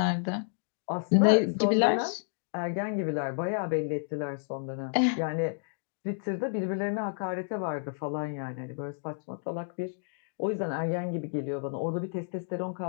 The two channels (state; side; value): silent; right; digital silence